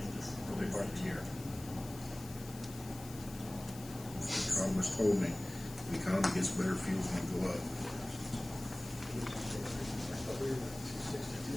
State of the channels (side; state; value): left; noise; hiss, 15 dB below the sound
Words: us early part of the year. The economist told me the economy gets better, fuel's going to go up.